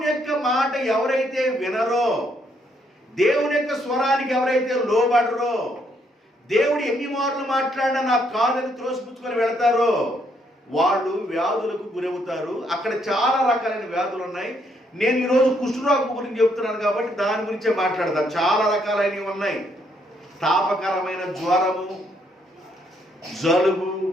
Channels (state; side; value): normal; both; correlation 0.72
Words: యొక్క మాట ఎవరైతే వినరో, దేవుని యొక్క స్వరానికి ఎవరైతే లోబడరో, దేవుడు ఎన్ని మార్లు మాట్లాడినా నాకు కాదని త్రోసిపుచ్చుకొని వెళతారో వాళ్ళు వ్యాధులకు గురవుతారు. అక్కడ చాలా రకాలైన వ్యాధులు ఉన్నాయి. నేను ఈరోజు కుష్ఠరోగం గురించి చెప్తున్నాను కాబట్టి దాని గురించే మాట్లాడతాను. చాలా రకాలైనవి ఉన్నాయి. తాపకరమైన జ్వరము, జలుబు,